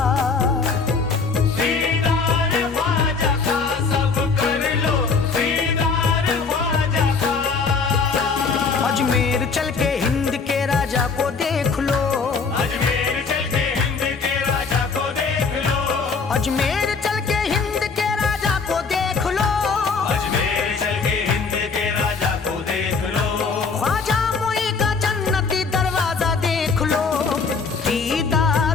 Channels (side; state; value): right; quieter; 4.9 dB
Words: दीदार ख्वाजा का सब कर लो, दीदार ख्वाजा का। अजमेर चल के हिंद के राजा को देख लो। अजमेर चल के हिंद के राजा को देख लो। अजमेर चल के हिंद के राजा को देख लो। अजमेर चल के हिंद के राजा को देख लो। ख्वाजा मोई का जन्नती दरवाजा देख लो।